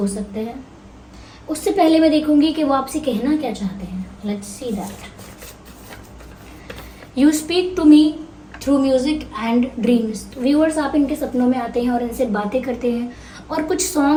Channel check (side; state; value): both; identical; correlation 1.00